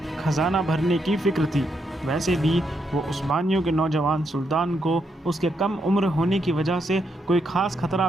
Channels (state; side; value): normal; both; correlation 0.79